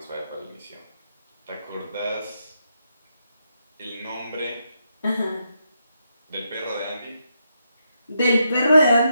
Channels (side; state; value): both; inverted; correlation -0.81